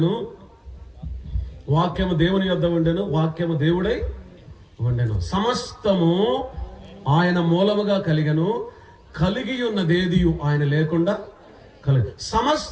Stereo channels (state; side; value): identical; both; correlation 1.00